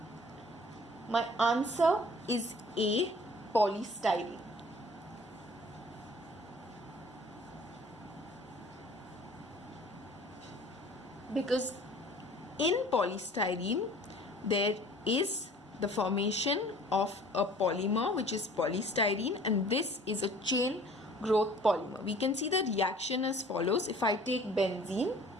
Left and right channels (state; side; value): normal; both; correlation 0.50